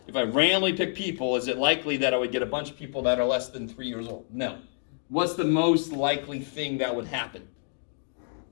If I randomly pick people, is it likely that I would get a bunch of people that are less than 3 years old? No. What's the most likely thing that would happen?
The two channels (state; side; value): silent; right; digital silence